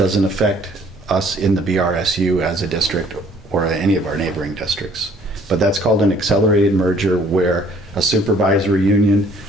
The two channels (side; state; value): both; normal; correlation 0.58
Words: affect us in the BRSU as a district or any of our neighboring districts. But that's called an accelerated merger, where a supervisory union